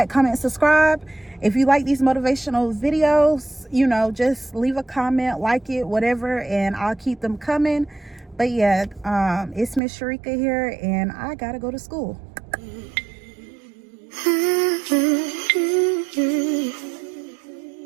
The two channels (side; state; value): left; drops out; at 9.8 s